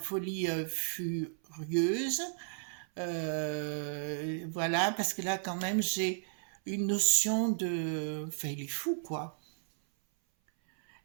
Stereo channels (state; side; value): silent; left; 55 dB below the other